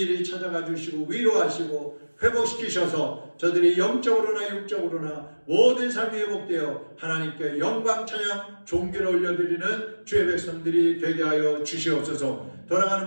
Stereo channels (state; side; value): inverted; both; correlation -1.00